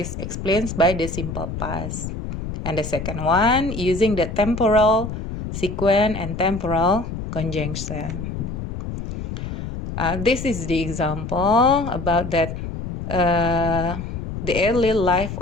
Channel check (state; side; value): noise; left; rumble, 6 dB below the sound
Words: explained by the simple past. And the second one, using the temporal sequence and temporal conjunction. This is the example about that the early life